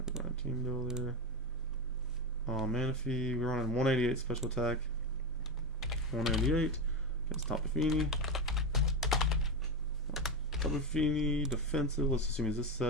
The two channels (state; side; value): normal; both; correlation 0.16